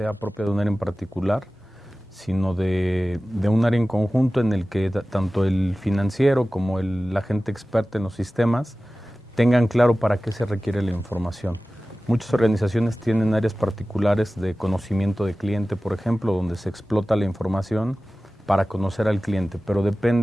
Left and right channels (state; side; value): normal; both; correlation 0.97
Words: propio de un área en particular, sino de un área en conjunto en el que tanto el financiero como la gente experta en los sistemas tengan claro para qué se requiere la información. Muchas organizaciones tienen áreas particulares de conocimiento de cliente, por ejemplo, donde se explota la información para conocer al cliente, pero